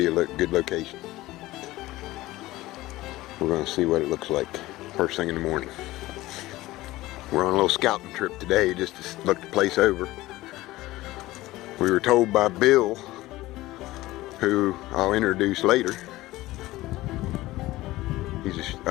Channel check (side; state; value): right; quieter; 17.8 dB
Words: a good location. We're going to see what it looks like first thing in the morning. We're on a little scouting trip today just to look the place over. We were told by Bill, who I'll introduce later. He's